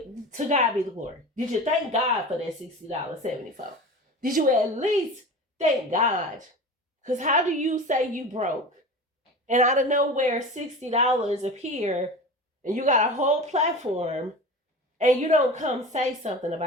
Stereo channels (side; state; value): both; normal; correlation 0.32